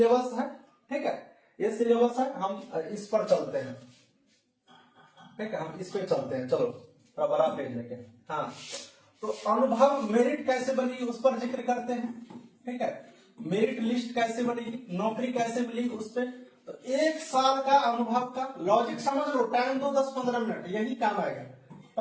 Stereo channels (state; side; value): identical; both; correlation 1.00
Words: है। ठीक है, ये सिलेबस है, हम इस पर चलते हैं। ठीक है, हम इस पे चलते हैं। चलो थोड़ा बड़ा पेज लेके। हाँ, तो अनुभव मेरिट कैसे बनेगी उस पर जिक्र करते हैं। ठीक है, मेरिट लिस्ट कैसे बनेगी, नौकरी कैसे मिलेगी उस पर। तो 1 साल का अनुभव का लॉजिक समझ लो, टाइम दो 10-15 मिनट, यही काम आएगा।